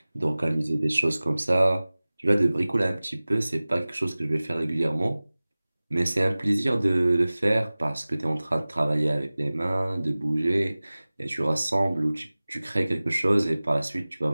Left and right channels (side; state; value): both; inverted; correlation -0.99